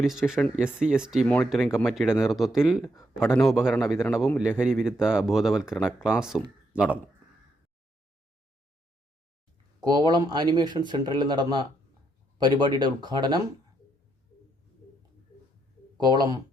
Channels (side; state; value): both; normal; correlation 0.77